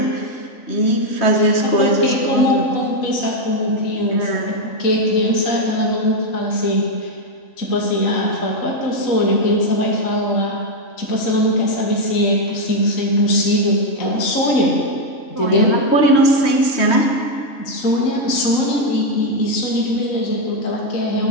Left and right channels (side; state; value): right; late; 3.2 ms